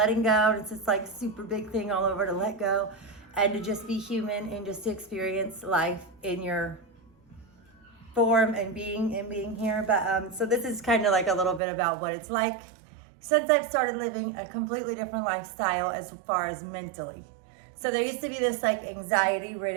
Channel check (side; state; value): left; drops out; at 11.6 s